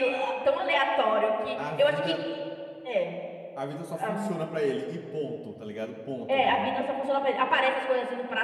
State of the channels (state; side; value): identical; both; correlation 1.00